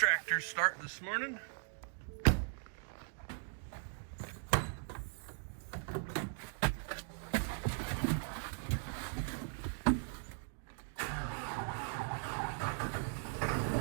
starting this morning.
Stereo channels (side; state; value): left; silent; 52 dB below the other